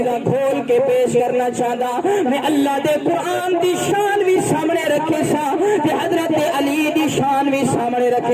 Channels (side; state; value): both; identical; correlation 1.00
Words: کھول کے پیش کرنا چاہتا میں اللہ دے قرآن دی شان بھی سامنے رکھے سا کہ حضرت علی دی شان بھی سامنے